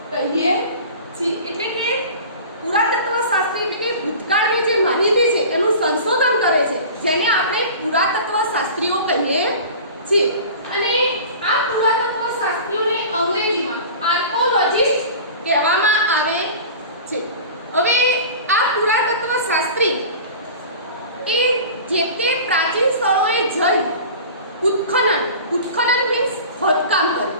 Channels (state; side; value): inverted; both; correlation -0.38